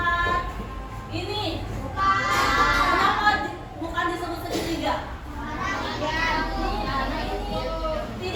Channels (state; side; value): identical; both; correlation 1.00